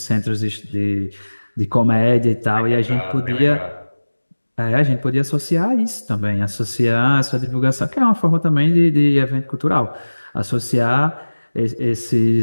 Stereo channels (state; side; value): inverted; both; correlation -1.00